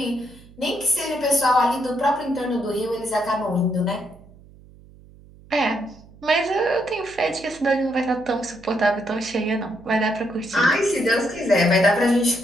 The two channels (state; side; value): noise; right; hum, 23 dB below the sound